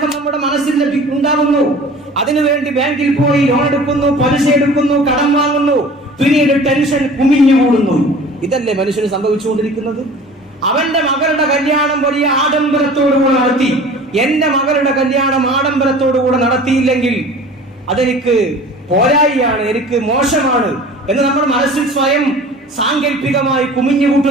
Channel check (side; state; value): both; normal; correlation 0.43